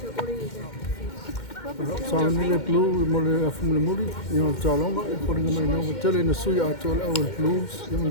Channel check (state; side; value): late; right; 2.1 ms